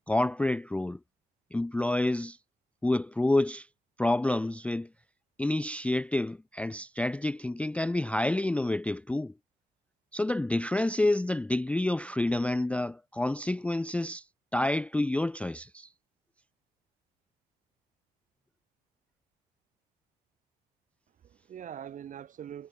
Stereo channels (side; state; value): both; normal; correlation 0.95